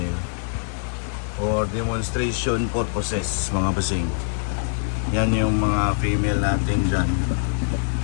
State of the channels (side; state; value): right; silent; digital silence